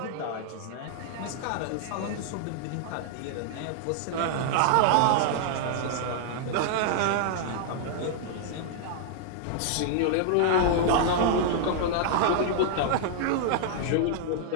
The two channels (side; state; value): both; different; correlation -0.01